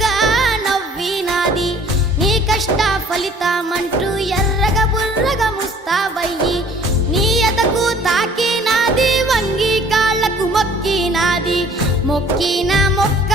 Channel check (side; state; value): both; normal; correlation 0.53